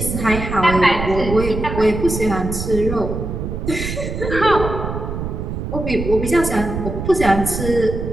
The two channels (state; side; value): noise; right; rumble, 5 dB below the sound